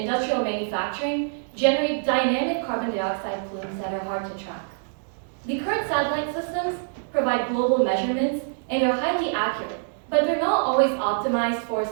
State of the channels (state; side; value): silent; left; digital silence